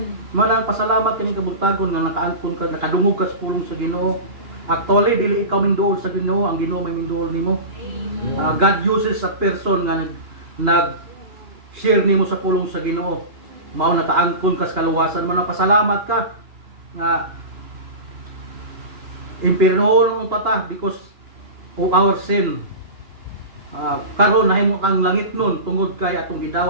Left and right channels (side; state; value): left; late; 2.9 ms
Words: Manang pasalamat kaning kabuntagon nga nakaangkon ka, nakadungog ka sa pulong sa Ginoo. Actually dili ikaw minduol sa Ginoo, ang Ginoo may minduol nimo. God uses a person nga nag-share nimo sa pulong sa Ginoo. Mao nakaangkon ka sa kaluwasan mo, pasalamat ka nga impirnoon ang patah because of our sin. Karon nahimo ang langit nun tungod kay atong